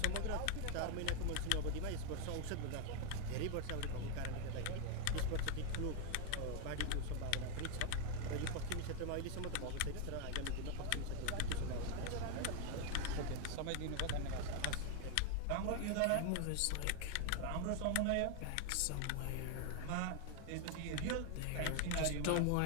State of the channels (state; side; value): different; both; correlation 0.01